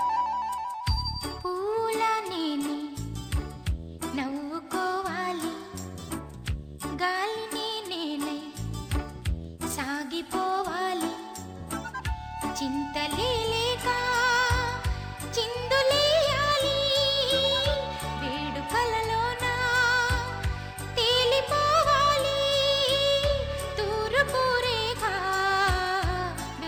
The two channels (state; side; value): identical; both; correlation 1.00